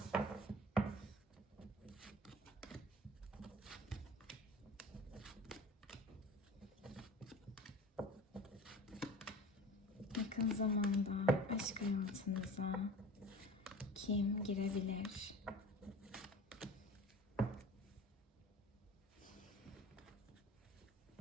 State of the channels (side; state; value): both; normal; correlation 0.39